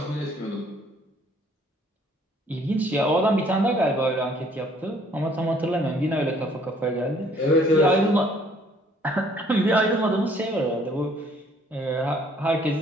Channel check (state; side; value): normal; both; correlation 0.61